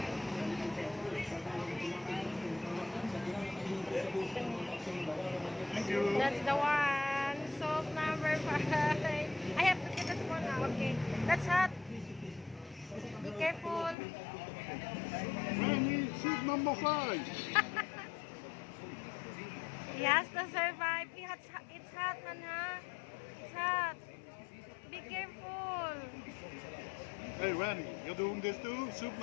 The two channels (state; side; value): drops out; right; at 14.0 s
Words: Thank you. That's the one. Soap number 5. I have to get this one now. Okay. That's hot. Be careful. Randy, soup number 5. He has to survive. It's hot, man, huh? It's hot. Be careful. Hey Randy, you're doing this too? Soup